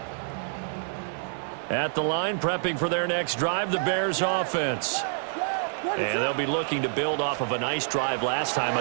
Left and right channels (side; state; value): left; silent; digital silence